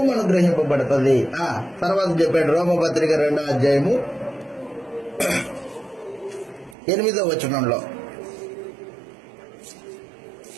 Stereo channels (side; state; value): left; drops out; at 6.8 s